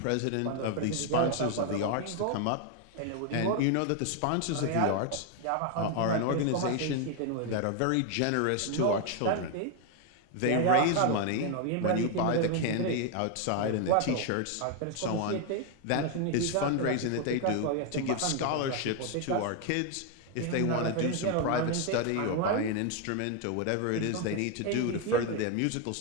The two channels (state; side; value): different; both; correlation 0.01